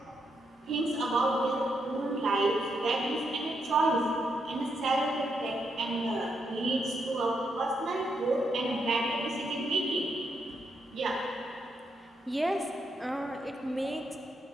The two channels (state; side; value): normal; both; correlation 0.79